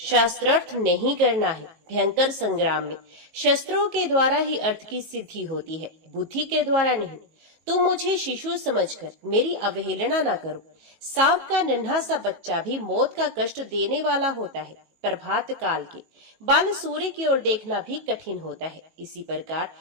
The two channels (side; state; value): left; late; 18 ms